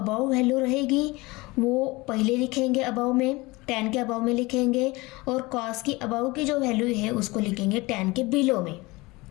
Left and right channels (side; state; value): right; quieter; 22.7 dB